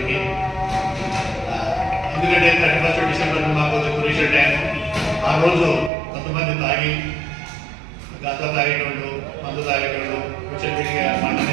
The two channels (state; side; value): drops out; left; at 5.9 s